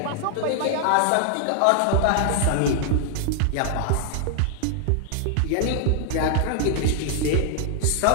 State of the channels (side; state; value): both; different; correlation -0.01